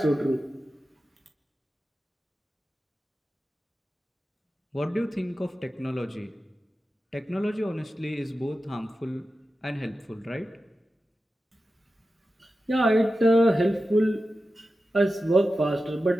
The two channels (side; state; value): both; normal; correlation 0.93